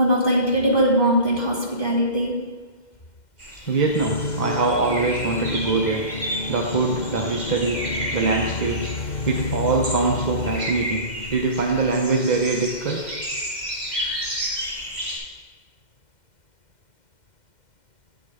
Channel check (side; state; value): right; late; 2.1 ms